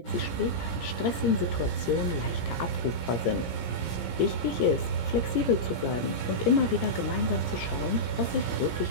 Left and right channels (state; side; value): late; right; 17 ms